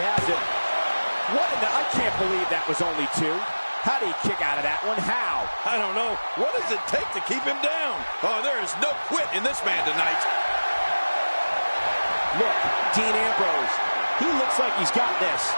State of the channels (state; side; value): inverted; both; correlation -1.00